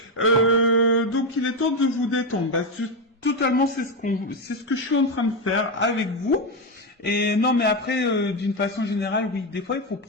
il est temps de vous détendre. Bah, totalement, c'est ce que je suis en train de faire avec vous. Et non, mais après, d'une façon générale, oui, des fois, il faut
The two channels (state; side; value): normal; both; correlation 0.09